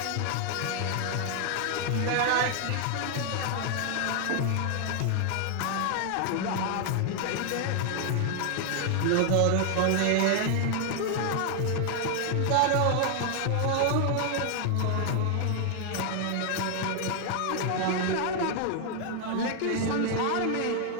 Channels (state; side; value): different; both; correlation 0.00